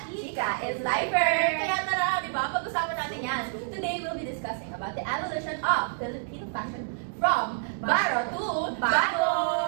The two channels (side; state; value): left; silent; digital silence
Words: Chika is lifer. Kaya tara, di ba? Pag-usapan natin yan. Today, we'll be discussing about the evolution of Filipino fashion from baro to bago.